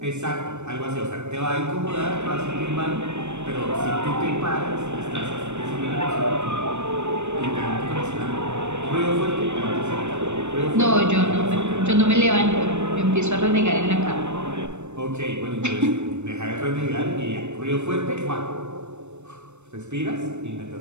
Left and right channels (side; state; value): left; late; 0.83 ms